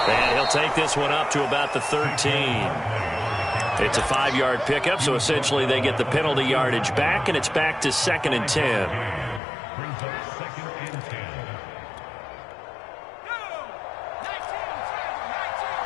And he'll take this one up to about the 13. It's a 5-yard pickup, so essentially they get the penalty yardage back, and it's back to 2nd and 10.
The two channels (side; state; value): right; drops out; at 9.4 s